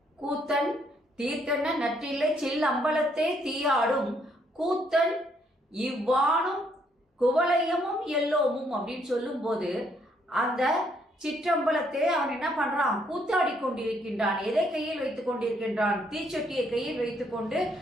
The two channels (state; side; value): normal; both; correlation 0.70